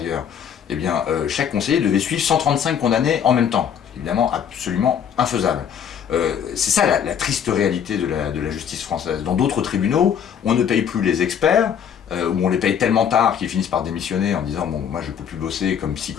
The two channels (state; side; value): quieter; right; 8.2 dB